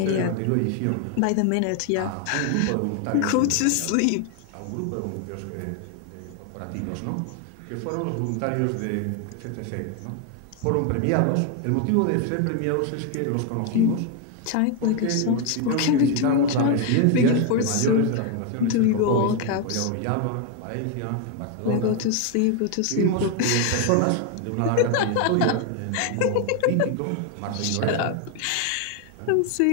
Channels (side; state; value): both; different; correlation 0.01